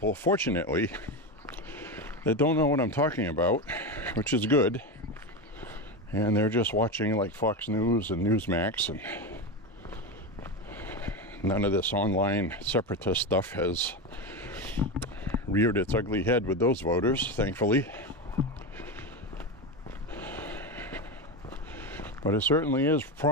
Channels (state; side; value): normal; both; correlation 0.17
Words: fortunately, that don't know what I'm talking about, which is good. And they're just watching like Fox News and Newsmax, and none of this online separatist stuff has reared its ugly head with those voters, thankfully. But it certainly is